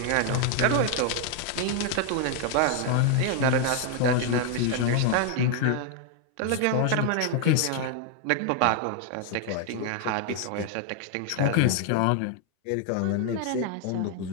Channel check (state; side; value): different; both; correlation 0.00